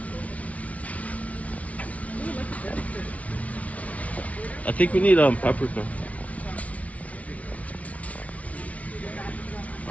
I think we need paprika.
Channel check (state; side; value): late; right; 0.067 ms